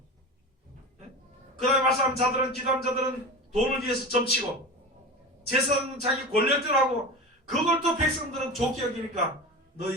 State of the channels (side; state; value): both; normal; correlation 0.28